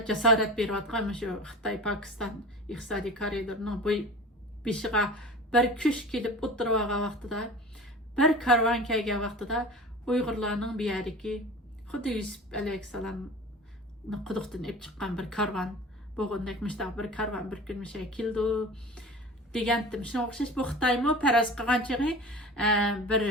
jasorat berayotgan shu Xitoy Pokiston iqtisodiy koridorining bu beshiga bir kuch kelib o'tirgan vaqtida bir karvon kelgan vaqtida Uyg'urlarning bu yerdagi xuddi Yusuf alayhissalomni quduqdan olib chiqqan bir karvon bo'lgandek bir karvon bir kun keldi degandim. Shunga o'xshash bu Xitoymi faraz qilgan chig'i bir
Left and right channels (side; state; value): both; normal; correlation 0.36